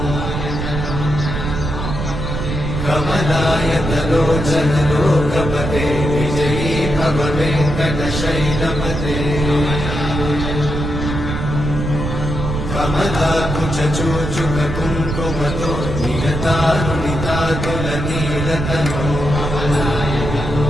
कमलायतलोचनलोकपते विजयी भव वेङ्कटशैलपते कमलाकुचूचुककुङ्कुमतो नियतारुणितातुलनीलतनो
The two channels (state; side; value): noise; right; rumble, 4 dB below the sound